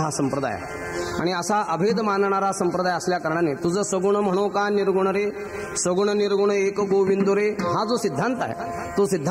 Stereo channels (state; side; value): identical; both; correlation 1.00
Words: हा संप्रदाय आहे. आणि असा अभेद मानणारा संप्रदाय असल्या कारणाने तुझं सगुण म्हणो का निर्गुण रे, सगुण निर्गुण एक गोविंद रे, हा जो सिद्धांत आहे तो